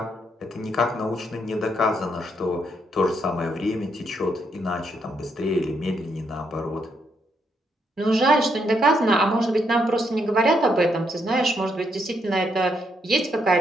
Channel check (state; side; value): normal; both; correlation 0.76